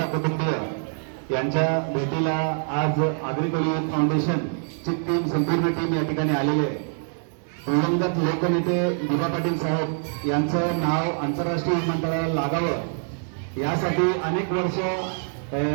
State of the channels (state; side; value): silent; left; 60 dB below the other